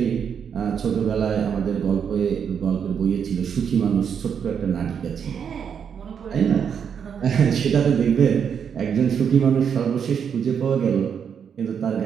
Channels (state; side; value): quieter; left; 7.4 dB